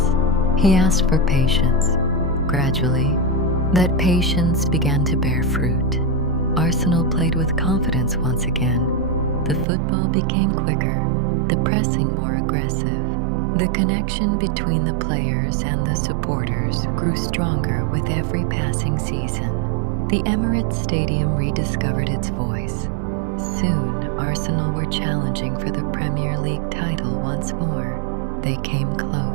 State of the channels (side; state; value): left; drops out; at 9.7 s